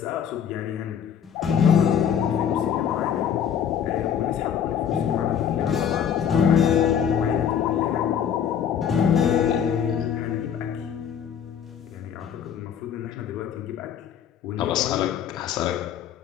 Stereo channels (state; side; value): quieter; right; 8.4 dB